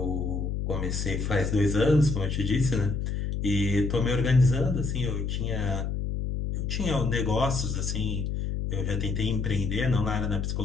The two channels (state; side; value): noise; left; hum, 2 dB below the sound